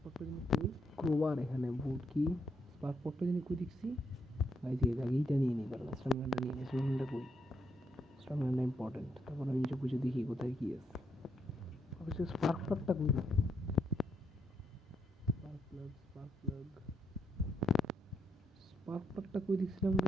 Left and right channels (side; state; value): both; normal; correlation 0.77